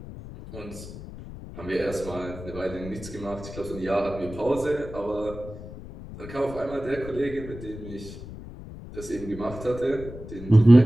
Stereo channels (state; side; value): noise; left; rumble, 13 dB below the sound